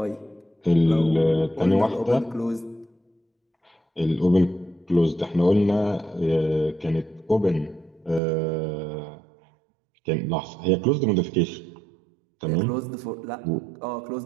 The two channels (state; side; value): drops out; left; at 8.2 s